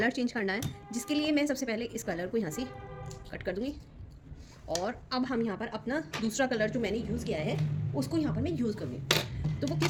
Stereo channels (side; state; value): both; identical; correlation 1.00